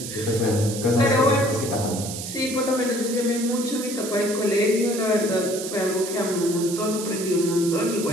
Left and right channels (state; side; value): noise; right; hiss, 8 dB below the sound